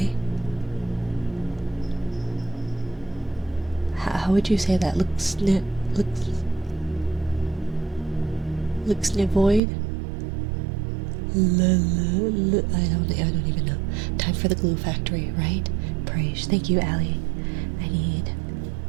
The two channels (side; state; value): left; drops out; at 9.6 s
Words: How would you say that? Looks void. I don't even know. Time for the glue factory, right? Praise. Thank you, Allie. I need